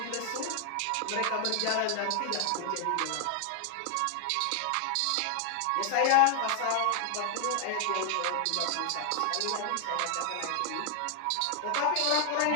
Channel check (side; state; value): both; different; correlation 0.00